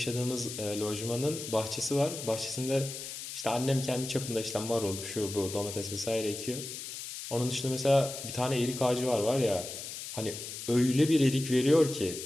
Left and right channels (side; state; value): left; noise; hiss, 8 dB below the sound